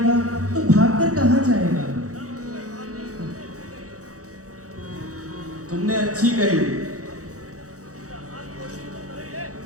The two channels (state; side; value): late; left; 0.66 ms